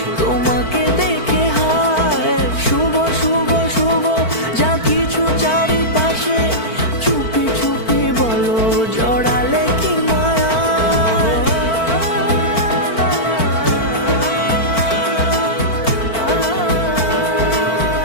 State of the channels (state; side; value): late; right; 4.5 ms